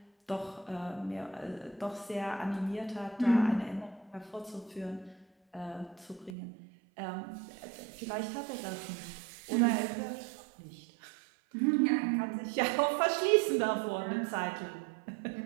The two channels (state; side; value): drops out; left; at 6.4 s